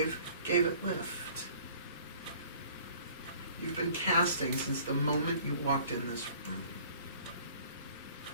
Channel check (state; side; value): inverted; both; correlation -0.52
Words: it lift. You've been casting since the moment you walked in this room.